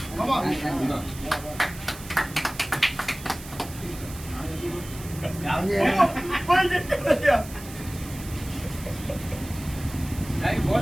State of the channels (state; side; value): noise; right; hiss, 15 dB below the sound